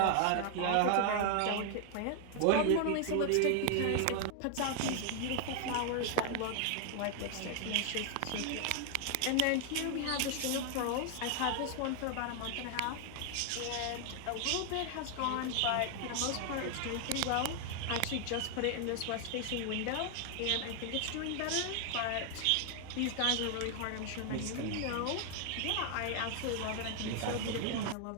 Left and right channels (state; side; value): different; both; correlation 0.00